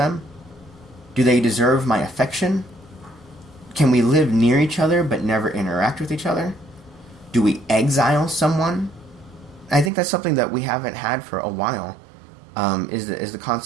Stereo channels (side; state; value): left; drops out; at 9.9 s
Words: Do they deserve my affection? Can we live near each other but never interact with each other? Do we exile someone? I think that's something that we haven't had for a while, is the